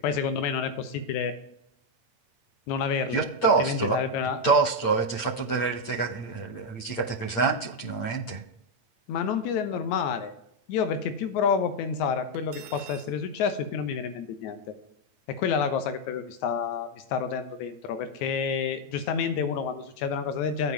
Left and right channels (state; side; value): late; right; 8.7 ms